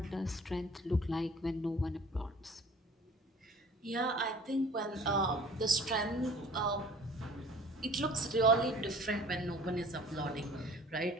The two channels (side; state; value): both; normal; correlation 0.49